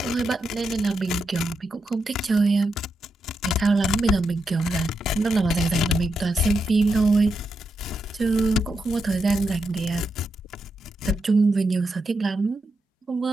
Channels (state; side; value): normal; both; correlation 0.85